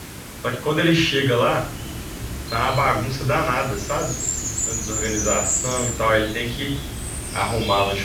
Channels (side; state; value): both; identical; correlation 1.00